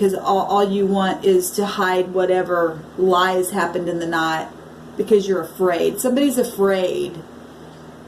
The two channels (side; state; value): both; identical; correlation 1.00